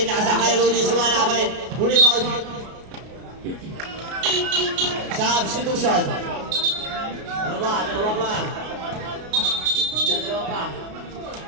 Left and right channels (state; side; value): late; left; 33 ms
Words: kay Rudy. Wala pa rin. Rebound. Substitution. Ano ba? Dalawa pa.